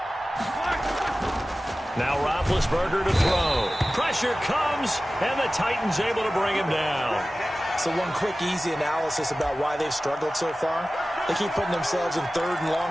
Now Roethlisberger to throw. Pressure comes, and the Titans able to bring him down. So one quick, easy analysis about why they've struggled so far. They keep putting themselves in 3rd and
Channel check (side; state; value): both; normal; correlation 0.96